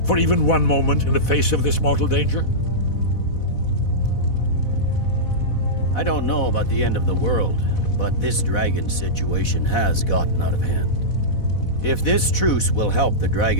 for even one moment in the face of this mortal danger? I don't know about the end of the world, but this dragon situation has gotten out of hand. If this truce will help the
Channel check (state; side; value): late; right; 4.1 ms